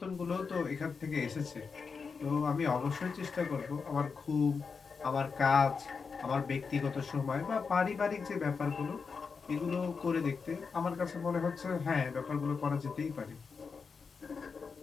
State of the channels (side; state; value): right; quieter; 5.3 dB